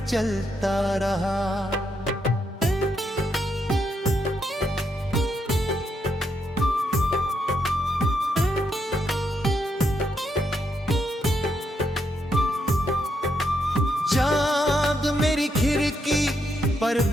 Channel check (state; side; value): normal; both; correlation 0.79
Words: चलता रहा। चाँद मेरी खिड़की पर